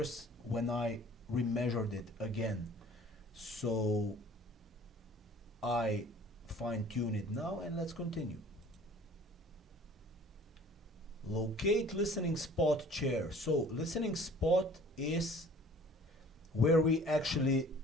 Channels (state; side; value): normal; both; correlation 0.49